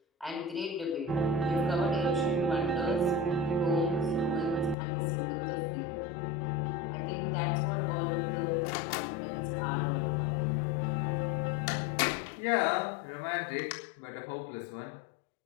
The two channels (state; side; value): drops out; right; at 4.8 s